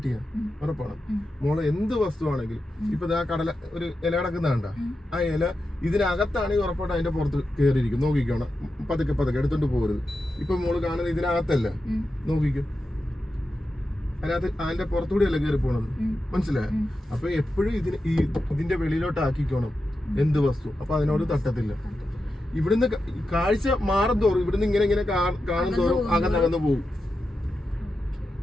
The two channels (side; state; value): both; normal; correlation 0.90